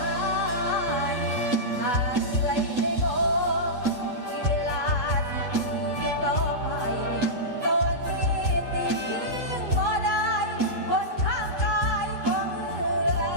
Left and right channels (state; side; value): late; left; 8.2 ms